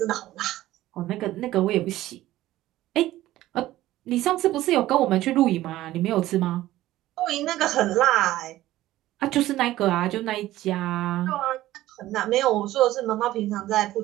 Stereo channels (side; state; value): left; quieter; 15.3 dB